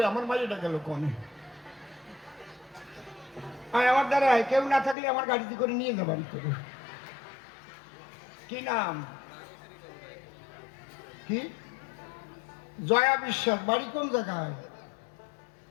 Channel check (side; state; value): right; drops out; at 5.0 s